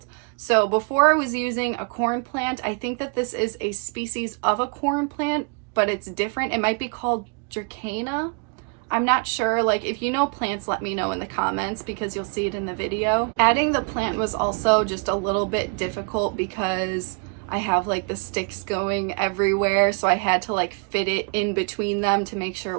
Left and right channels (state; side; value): quieter; left; 36.9 dB